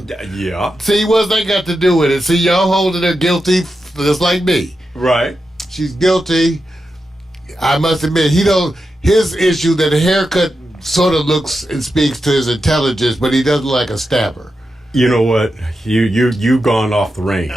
Yeah, See, what's that got to do with it? See, y'all holding her guilty just like me. right. She's guilty. I must admit, his issue that the haircut sort of looks and speaks to his intelligence, but he doesn't like a stabber. You know what? You've gone off the range.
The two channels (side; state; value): both; normal; correlation 0.88